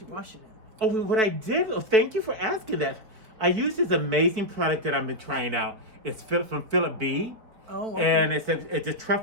you wash it in? Oh, what I did, thank you for asking that. I used this amazing product that I've been trying out. It's from Philip B. Oh, okay. And it's a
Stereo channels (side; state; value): left; late; 4.7 ms